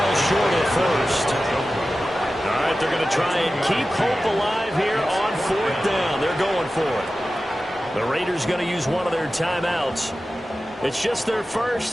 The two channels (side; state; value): both; normal; correlation 0.94